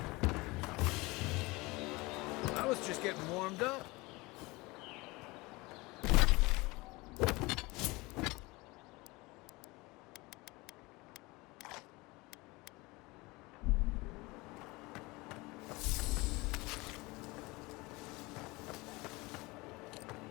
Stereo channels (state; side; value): quieter; right; 23.3 dB